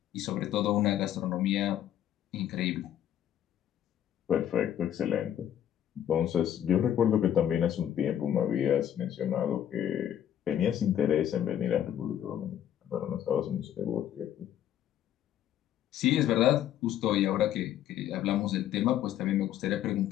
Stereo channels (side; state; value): right; quieter; 10.8 dB